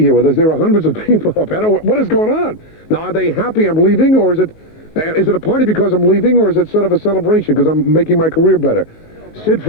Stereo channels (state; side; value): late; right; 19 ms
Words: here with us. There are hundreds of people up. I don't know what is going on. Now, are they happy I'm leaving, or is it a party because I'm leaving, or is it sort of a celebration because I'm making my career better? Sid